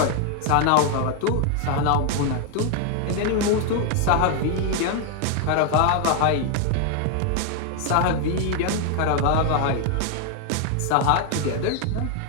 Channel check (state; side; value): different; both; correlation 0.01